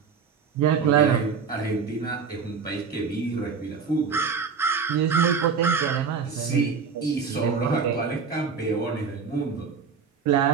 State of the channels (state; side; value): quieter; left; 5.8 dB